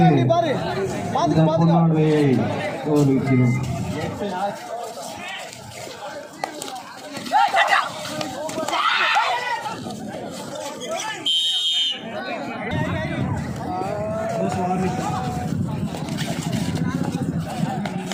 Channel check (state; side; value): identical; both; correlation 1.00